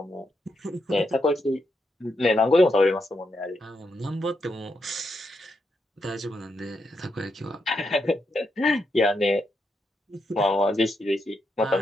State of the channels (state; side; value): normal; both; correlation 0.82